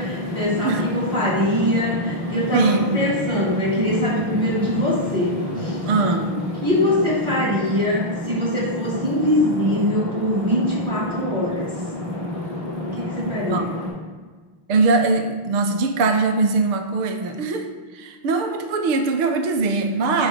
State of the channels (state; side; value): late; left; 6.6 ms